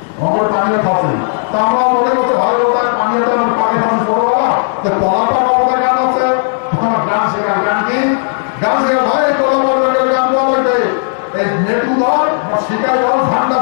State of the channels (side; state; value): right; silent; digital silence